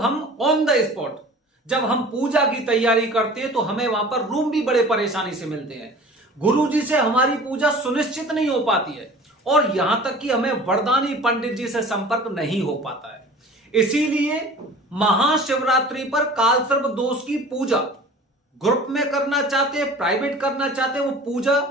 हम ऑन द स्पॉट जब हम पूजा की तैयारी करते हैं तो हमें वहां पर रूम भी बड़े परेशानी से मिलते हैं। गुरुजी से हमारी पूजा सुनिश्चित नहीं हो पाती है और यहां तक कि हमें वरदानी पंडित जी से संपर्क नहीं हो पाता है। इसीलिए महाशिवरात्रि पर कालसर्प दोष की पूजा ग्रुप में करना चाहते हैं, प्राइवेट करना चाहते हैं, वो पूजा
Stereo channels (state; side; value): normal; both; correlation 0.43